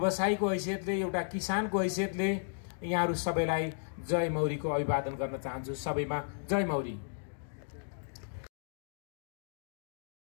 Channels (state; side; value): silent; right; digital silence